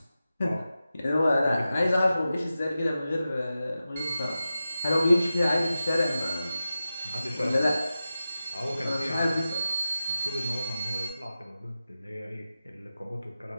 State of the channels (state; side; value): inverted; both; correlation -0.93